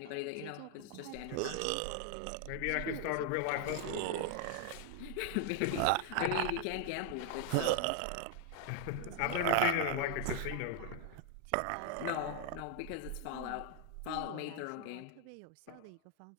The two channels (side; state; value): both; different; correlation 0.00